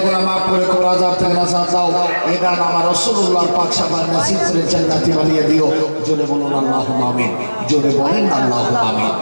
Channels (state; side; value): inverted; both; correlation -1.00